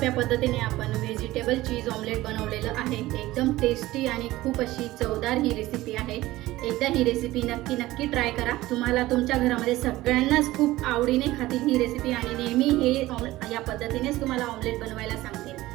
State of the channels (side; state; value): left; quieter; 17.3 dB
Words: पद्धतीने आपण व्हेजिटेबल चीज ऑमलेट बनवलेलं आहे। एकदम टेस्टी आणि खूप अशी चवदार ही रेसिपी आहे। एकदा ही रेसिपी नक्की ट्राय करा। तुम्हाला तुमच्या घरामध्ये सगळ्यांनाच खूप आवडीने खातील ही रेसिपी आणि नेहमी हे या पद्धतीनेच तुम्हाला ऑमलेट बनवायला